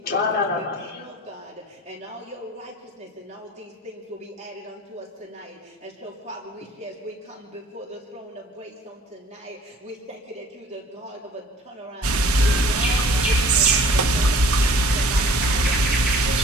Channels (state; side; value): normal; both; correlation 0.50